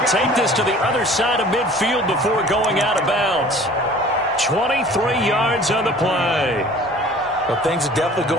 take this to the other side of midfield before going out of bounds. 23 yards on the play. Well, things are definitely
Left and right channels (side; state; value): both; normal; correlation 0.47